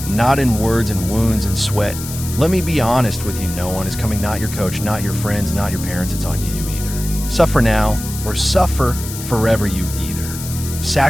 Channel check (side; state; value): left; noise; hiss, 10 dB below the sound